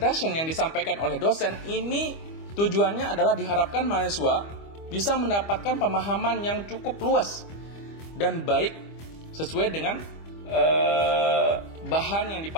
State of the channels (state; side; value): late; right; 25 ms